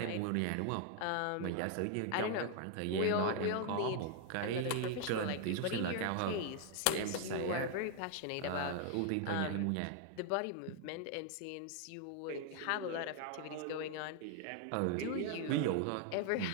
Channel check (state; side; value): different; both; correlation 0.00